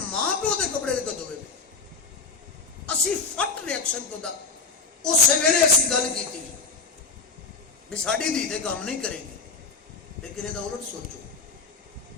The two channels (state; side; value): quieter; right; 4.5 dB